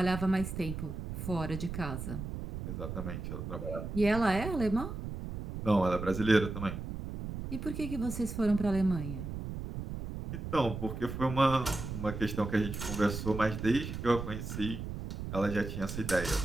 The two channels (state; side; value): noise; right; rumble, 6 dB below the sound